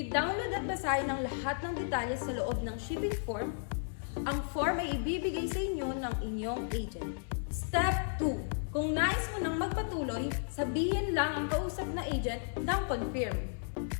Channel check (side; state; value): right; silent; digital silence